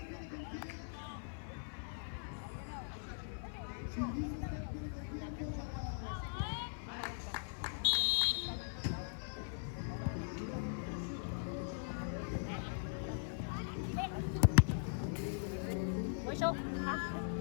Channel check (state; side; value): silent; right; 51 dB below the other